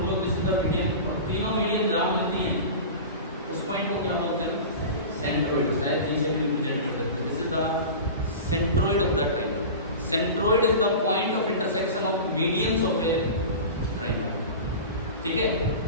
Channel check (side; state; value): both; inverted; correlation -0.32